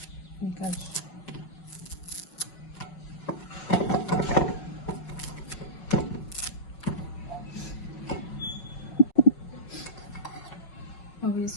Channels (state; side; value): late; right; 5.5 ms